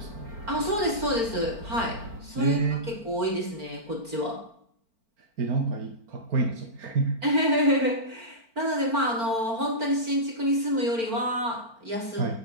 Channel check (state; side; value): late; left; 4.4 ms